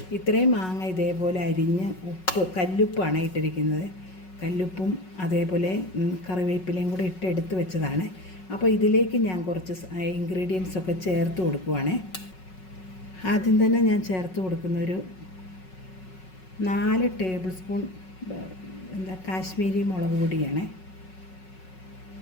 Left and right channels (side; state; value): right; late; 5.4 ms